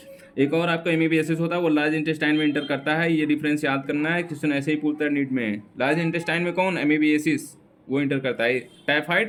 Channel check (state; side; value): identical; both; correlation 1.00